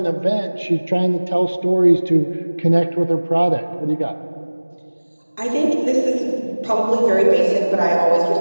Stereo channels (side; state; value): both; inverted; correlation -1.00